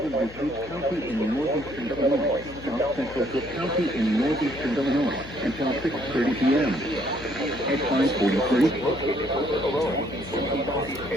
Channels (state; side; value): noise; left; hum, 17 dB below the sound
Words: DuPage County in northeastern Illinois, south central Cook County in northeastern Illinois, until 6:30 p.m. At